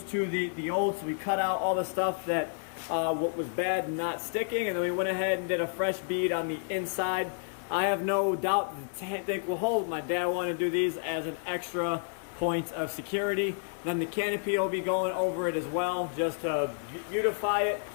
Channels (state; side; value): silent; right; digital silence